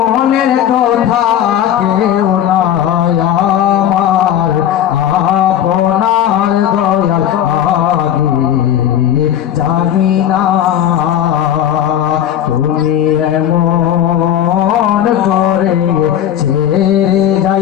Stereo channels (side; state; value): right; quieter; 10.4 dB